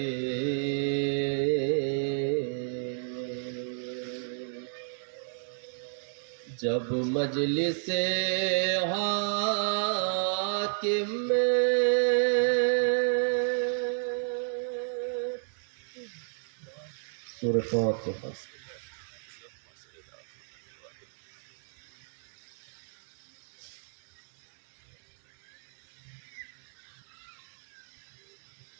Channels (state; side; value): silent; left; digital silence